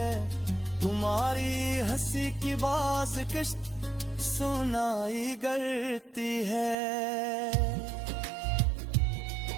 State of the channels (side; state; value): left; drops out; at 6.8 s